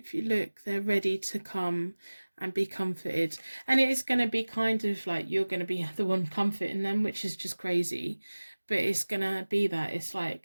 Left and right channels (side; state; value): both; inverted; correlation -1.00